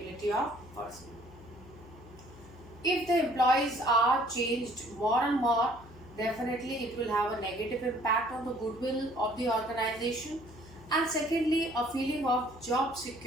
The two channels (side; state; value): left; noise; hum, 20 dB below the sound